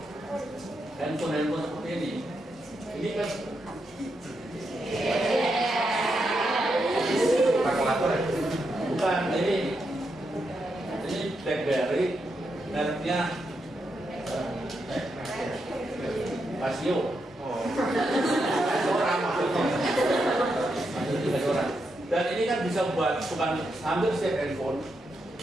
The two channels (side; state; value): both; normal; correlation 0.83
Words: handphone seperti ini kan kalkulator ya? Bukan, ini BlackBerry, mereknya Casio. Orang maksudnya. Dan ini kan bisa buat bukan hampir setiap handphone